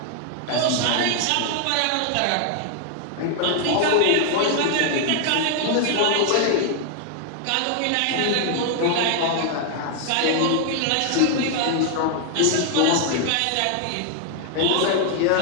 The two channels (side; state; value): both; different; correlation 0.00